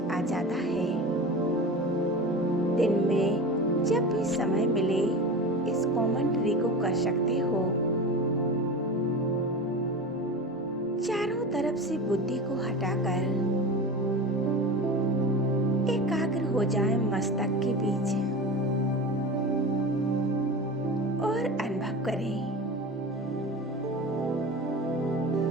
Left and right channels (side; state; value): both; normal; correlation 0.30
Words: जाता है। दिन में जब भी समय मिले इस कमेंट्री को कर सकते हो। चारों तरफ से बुद्धि को हटाकर एकाग्र हो जाए मस्तक के बीच और अनुभव करें